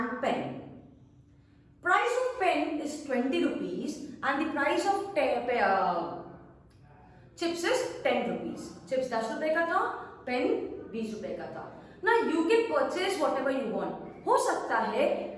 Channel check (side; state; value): both; identical; correlation 1.00